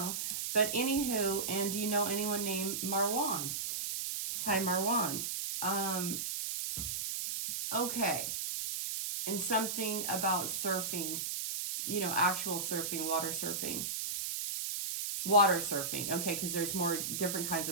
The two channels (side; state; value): right; noise; hiss, 2 dB below the sound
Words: but anywho, and do you know anyone named Marwan? Hi, Marwan. Okay. And something about surfing, you know, actual surfing, water surfing. Water surfing, okay, because there's more different kinds